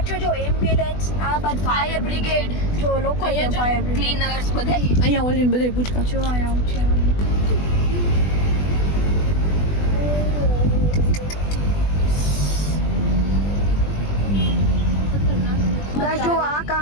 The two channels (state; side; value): late; right; 20 ms